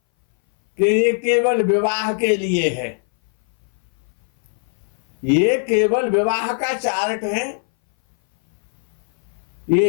कि ये केवल विवाह के लिए है, ये केवल विवाह का चार्ट है,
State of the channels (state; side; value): silent; right; 61 dB below the other